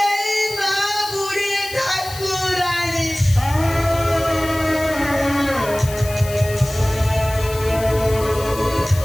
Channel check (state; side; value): noise; left; hiss, 13 dB below the sound